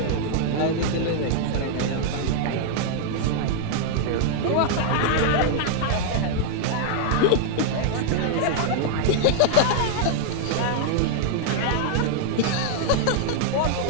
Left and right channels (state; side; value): different; both; correlation -0.01